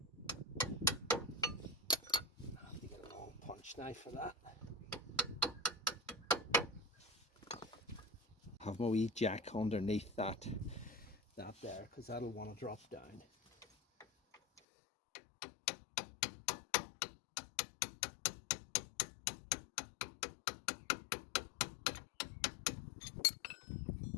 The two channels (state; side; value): drops out; right; at 14.6 s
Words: I have to get a long punch knife for that. Have my wee jack underneath that there, because that'll want to drop down.